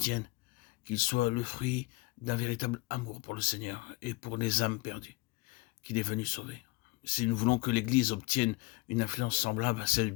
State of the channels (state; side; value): quieter; right; 23.2 dB